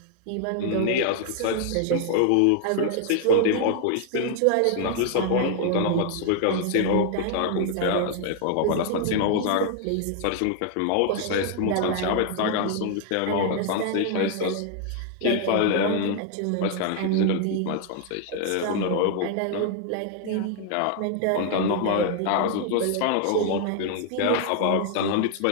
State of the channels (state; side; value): different; both; correlation 0.00